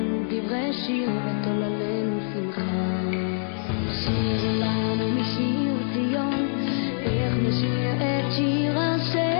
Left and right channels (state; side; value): silent; right; 62 dB below the other